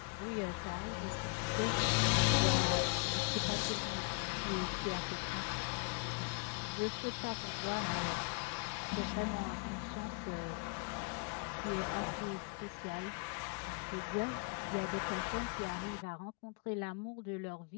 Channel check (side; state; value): right; quieter; 37.3 dB